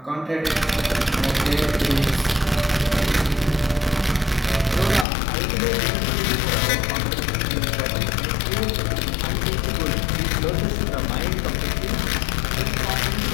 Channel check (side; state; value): right; drops out; at 5.1 s